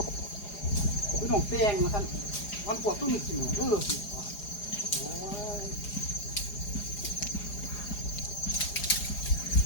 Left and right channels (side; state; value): right; late; 4.9 ms